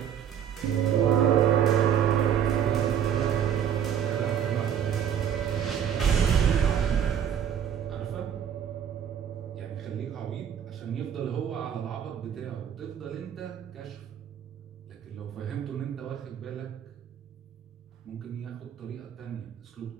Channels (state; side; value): quieter; left; 8.9 dB